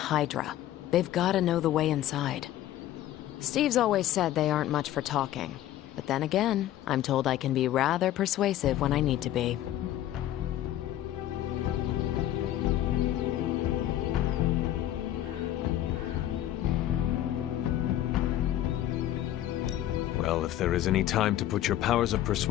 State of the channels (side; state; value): right; quieter; 12.9 dB